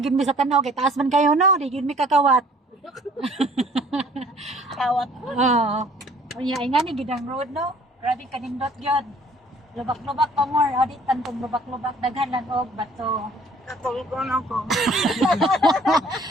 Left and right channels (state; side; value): normal; both; correlation 0.55